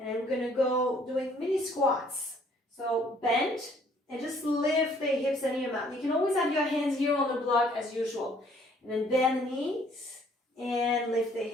I'm going to go doing mini squats. So bend and just lift the hips any amount. You can always have your hands here on the block as usual. And then bend the knees and lift the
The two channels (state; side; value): normal; both; correlation 0.61